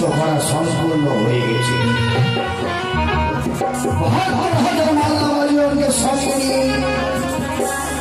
করা সম্পূর্ণ হয়ে গেছে। মাল্লাবাড়িকে সঙ্গে নিয়ে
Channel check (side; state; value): both; identical; correlation 1.00